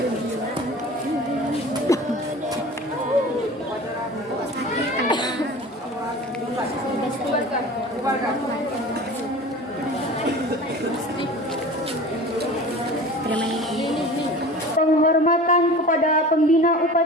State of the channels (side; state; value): both; normal; correlation 0.38